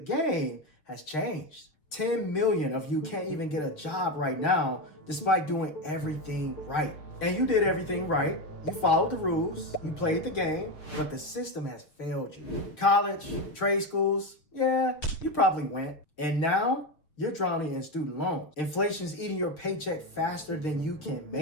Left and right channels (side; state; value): right; late; 6.4 ms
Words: has changed. 10 million of you can't even get a job right now despite doing everything right. And you did everything right. You followed the rules, you played the game, but the system has failed you. College, trade schools, yeah, you probably went. And now you're drowning in student loans. Inflation's eating your paycheck faster than you can